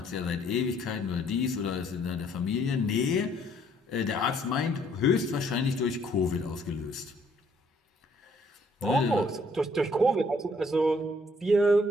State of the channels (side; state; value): both; normal; correlation 0.64